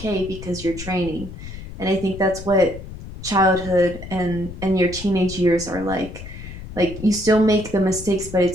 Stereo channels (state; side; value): noise; left; rumble, 12 dB below the sound